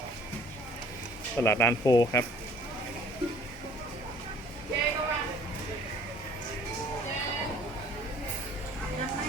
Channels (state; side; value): normal; both; correlation 0.54